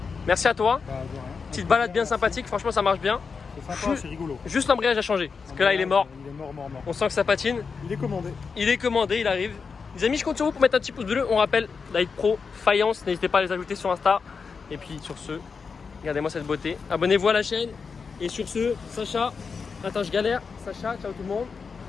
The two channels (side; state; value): right; quieter; 5.3 dB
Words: merci à toi. Bah, de rien. Petite balade bien sympathique, franchement ça marche bien. C'est sympa, c'est rigolo. Juste l'embrayage a changé, parce que là il est mort. Il est mort. On sent que ça patine. Il est commandé. Il est commandé, il arrive. Les amis, je compte sur vous pour mettre un petit pouce bleu. On rappelle, Light Pro, Faïence, n'hésitez pas à les ajouter sur Insta. Et puis sur ce, regardez-moi cette beauté. Abonnez-vous à la chaîne. Et sur ce, Sacha, attends je galère. Sacha, ciao tout le monde.